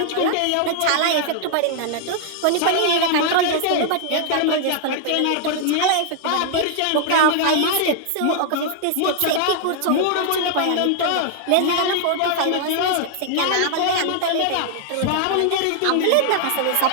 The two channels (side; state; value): both; different; correlation 0.00